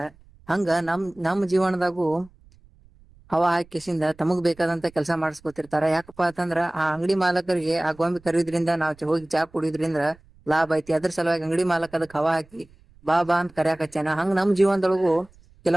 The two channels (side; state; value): right; noise; rumble, 27 dB below the sound